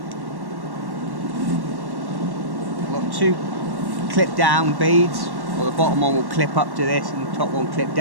I've got 2 clip down beads, or the bottom one will clip up to this and the top one clip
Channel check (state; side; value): late; left; 1.1 ms